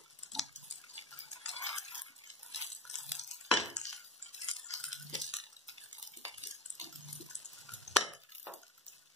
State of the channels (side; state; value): both; normal; correlation 0.30